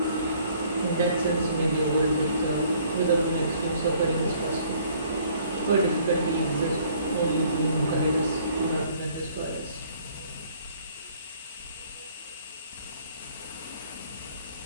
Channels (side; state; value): both; inverted; correlation -0.59